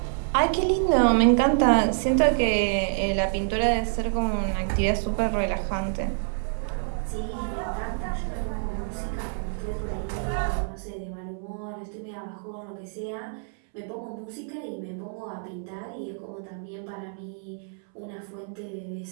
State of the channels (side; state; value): left; silent; 60 dB below the other